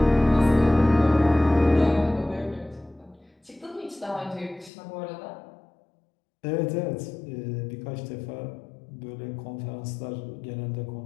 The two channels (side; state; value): right; drops out; at 4.7 s